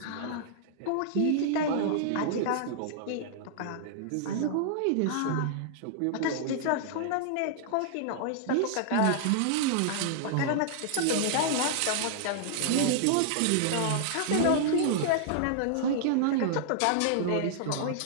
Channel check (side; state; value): both; different; correlation -0.01